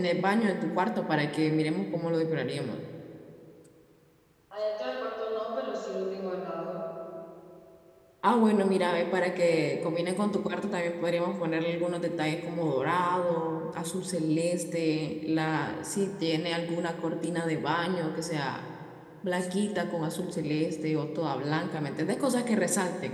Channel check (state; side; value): identical; both; correlation 1.00